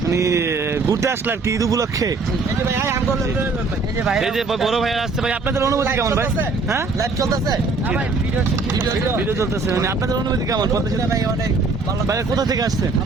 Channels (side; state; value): left; quieter; 3.9 dB